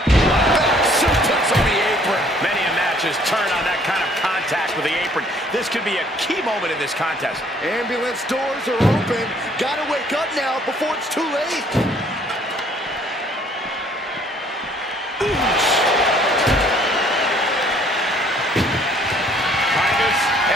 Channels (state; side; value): normal; both; correlation 0.60